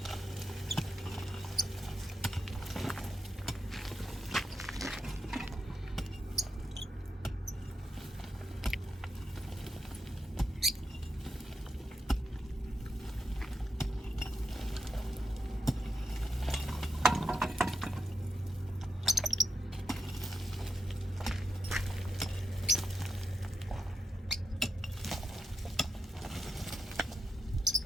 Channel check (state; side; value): normal; both; correlation 0.85